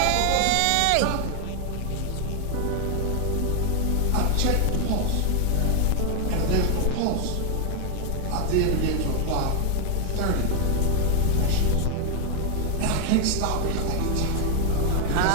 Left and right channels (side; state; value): both; different; correlation 0.00